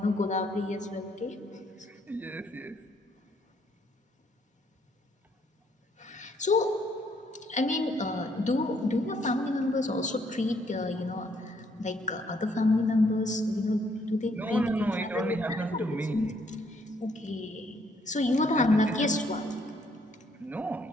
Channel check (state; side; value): normal; both; correlation 0.68